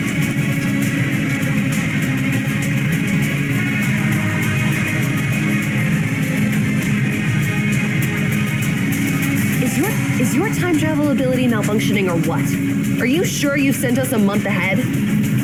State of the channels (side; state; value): both; identical; correlation 1.00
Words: Is your time travel ability malfunctioning or what? Are you sure you've sent us a month ahead?